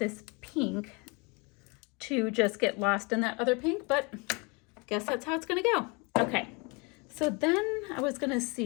pink to just get lost in that other pink, but guess that's how it's gonna go. Okay, so then I was gonna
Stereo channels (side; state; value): right; quieter; 29.7 dB